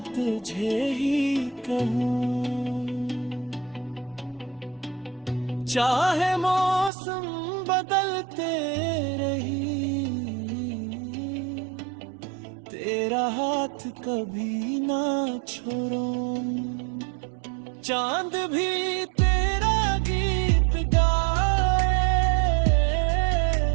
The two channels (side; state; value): left; drops out; at 6.9 s